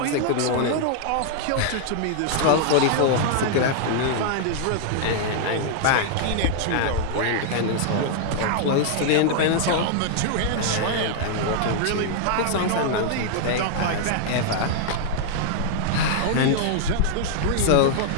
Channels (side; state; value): both; different; correlation -0.01